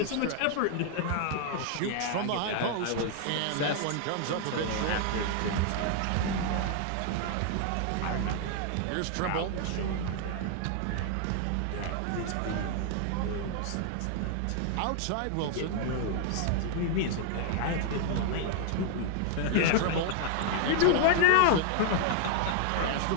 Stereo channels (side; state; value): both; different; correlation 0.00